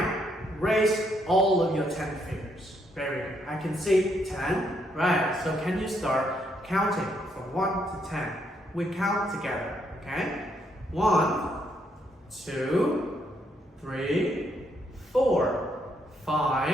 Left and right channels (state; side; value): normal; both; correlation 0.74